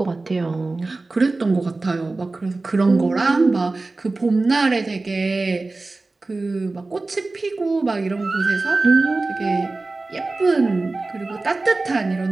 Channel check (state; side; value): quieter; left; 3.4 dB